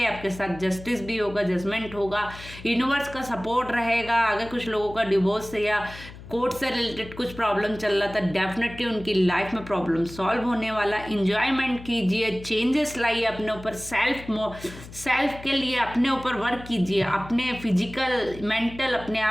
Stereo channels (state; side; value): noise; left; hum, 16 dB below the sound